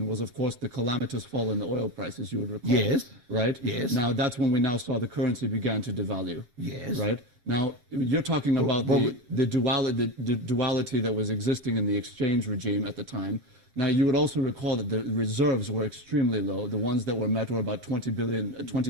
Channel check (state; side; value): late; left; 7.3 ms